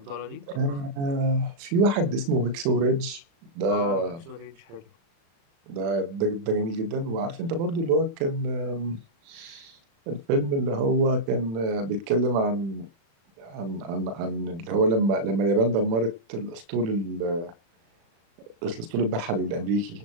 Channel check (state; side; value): late; left; 36 ms